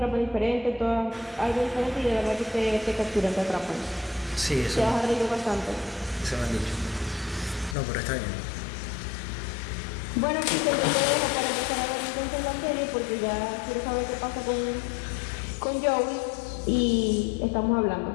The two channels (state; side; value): drops out; right; at 7.8 s